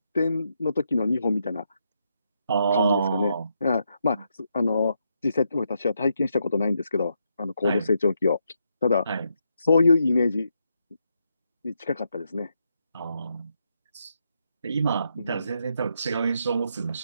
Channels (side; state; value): both; inverted; correlation -0.80